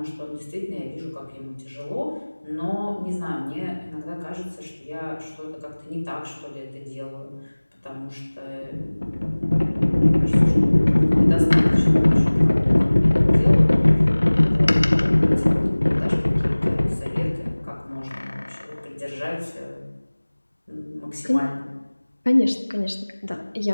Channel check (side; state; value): both; inverted; correlation -1.00